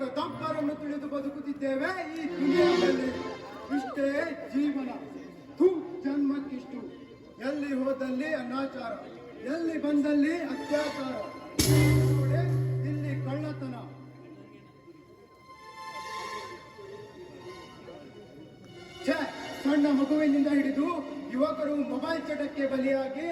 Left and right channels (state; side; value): identical; both; correlation 1.00